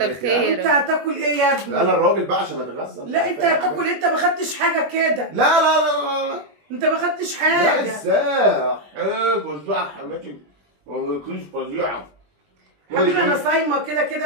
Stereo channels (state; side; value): late; left; 21 ms